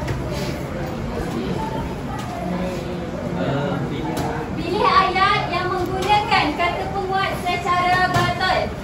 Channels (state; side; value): identical; both; correlation 1.00